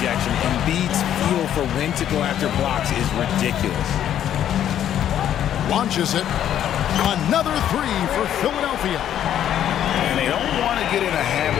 Embiid's feel for when to go after blocks is ridiculous. Launches it. Another three for Philadelphia. And they don't want to get in a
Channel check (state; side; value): quieter; right; 10.6 dB